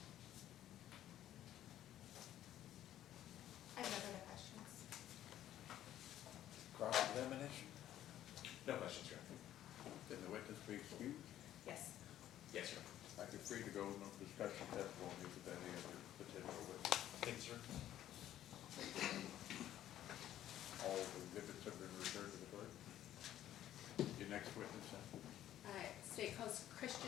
I have no further questions. Cross-examination? No questions, Your Honor. Did the witness be excused? Yes. Yes, sir. I could free to go, no discussion testimony with any other potential witness. Thank you, sir. All the exhibits have been returned to the clerk. Your next witness, then? State Host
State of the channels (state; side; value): quieter; right; 12.3 dB